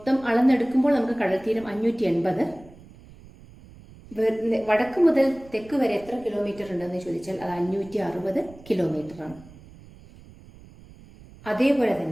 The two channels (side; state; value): right; noise; rumble, 21 dB below the sound